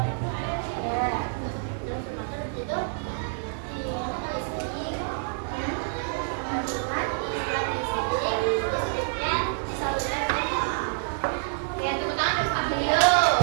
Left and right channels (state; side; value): silent; left; digital silence